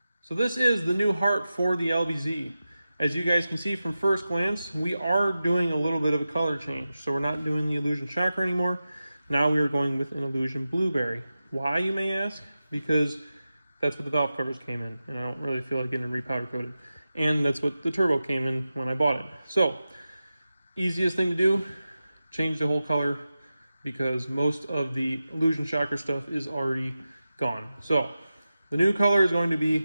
So this is the new heart for the LBZ. As you guys can see from first glance, we are doing a little bit of a color change. So we're not doing the Illusion Shocker anymore. Now we are going with an Illusion Blueberry. Why, you may ask? Because that's what the valve covers came in, and I don't really feel like getting them repowder coated. And that's what the turbo came in when I bought it. So, easiest thing to do, change the whole color, because most of the Illusion Shocker stuff is already gone. So, the new color is going to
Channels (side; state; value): both; inverted; correlation -0.93